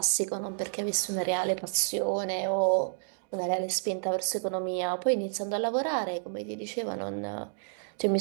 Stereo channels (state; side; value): silent; left; digital silence